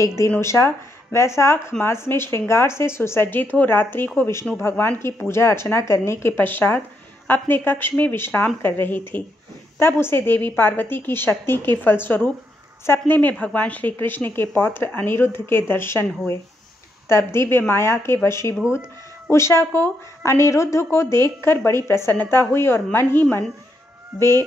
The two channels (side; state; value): both; normal; correlation 0.79